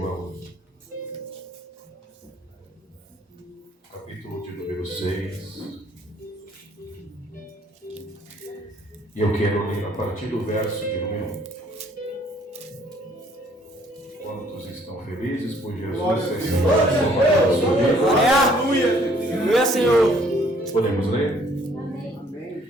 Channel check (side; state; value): both; normal; correlation 0.61